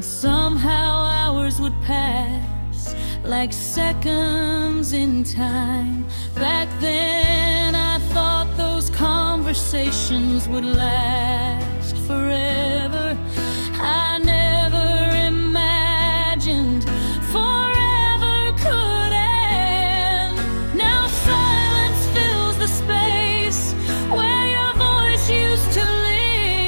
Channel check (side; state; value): both; inverted; correlation -1.00